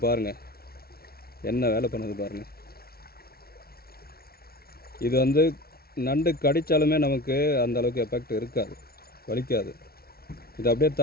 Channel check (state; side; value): late; right; 0.44 ms